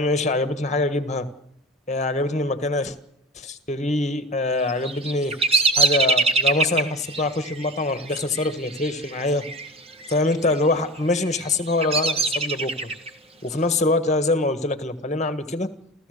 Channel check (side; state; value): both; normal; correlation 0.33